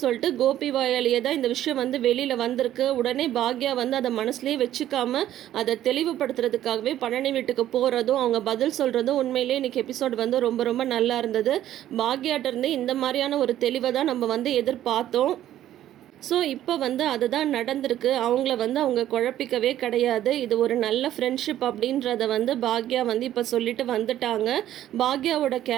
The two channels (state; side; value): quieter; left; 12.4 dB